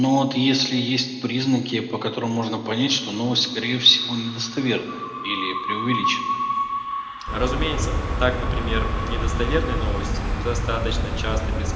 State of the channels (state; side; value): identical; both; correlation 1.00